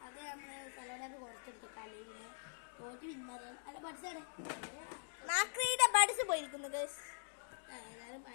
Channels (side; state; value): right; silent; digital silence